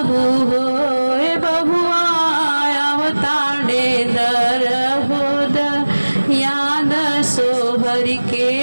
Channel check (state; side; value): inverted; both; correlation -1.00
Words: होय बहुआ अवतारे दर होद याद सोहर के